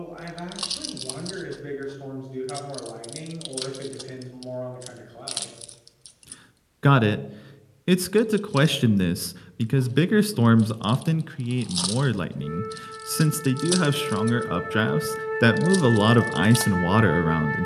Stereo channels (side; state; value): both; identical; correlation 1.00